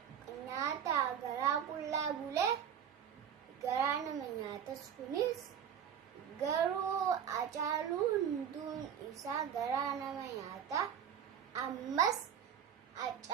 garaa qullaa bulee garaa nama nyaatas kunis garuu Haacaaluu hunduun isaa garaa nama nyaata. Ammas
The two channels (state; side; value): quieter; left; 8.6 dB